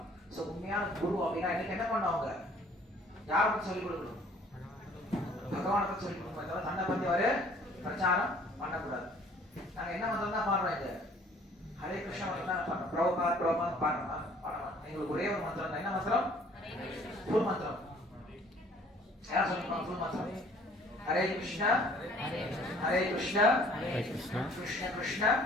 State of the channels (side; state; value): both; normal; correlation 0.56